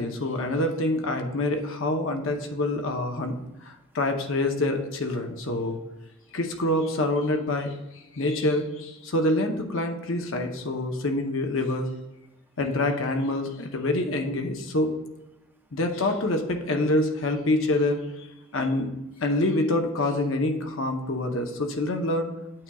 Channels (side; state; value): both; normal; correlation 0.32